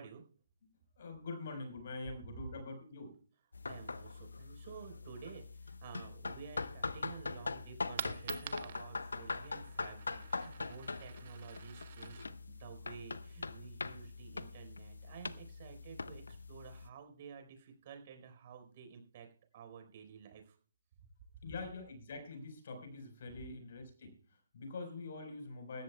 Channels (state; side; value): inverted; both; correlation -0.83